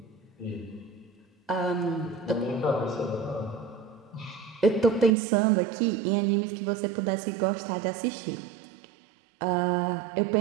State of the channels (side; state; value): left; drops out; at 5.2 s